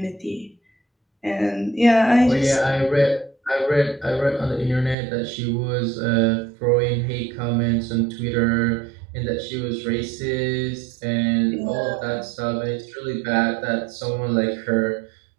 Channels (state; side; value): drops out; left; at 5.0 s